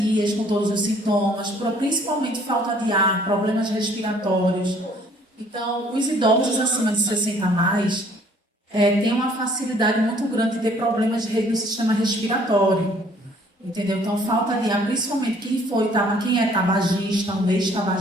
com todos os sintomas, principalmente falta de ar, problemas respiratórios. Então, os idosos acima de 60 a mais têm uma facilidade muito grande de ter problemas no sistema respiratório. Entendeu? Então, falta de ar, principalmente quem é tabagista, um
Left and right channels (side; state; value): both; normal; correlation 0.59